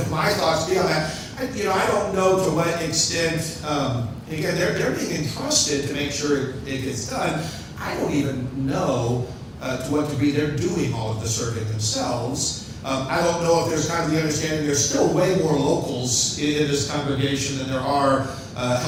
my thoughts be on that? I don't know to what extent. Again, they're being entrusted to make sure it gets done. I don't even know to what degree they're doing all of the serving themselves. I don't know if there's kind of the understanding there's still way more locals in this congregation than there are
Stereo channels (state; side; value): identical; both; correlation 1.00